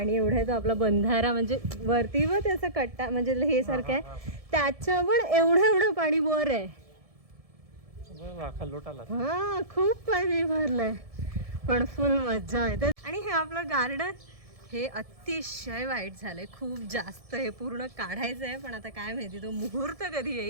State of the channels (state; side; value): late; left; 1.7 ms